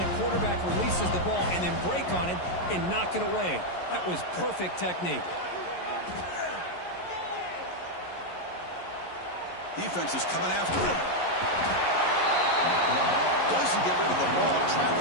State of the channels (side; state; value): right; late; 11 ms